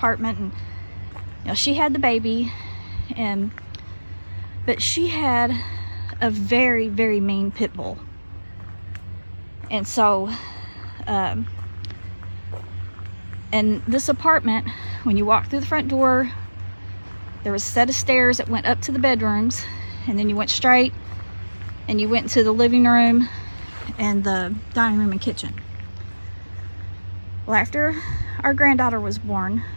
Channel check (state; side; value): inverted; both; correlation -1.00